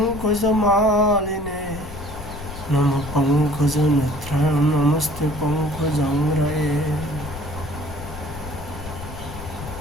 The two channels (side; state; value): left; noise; rumble, 12 dB below the sound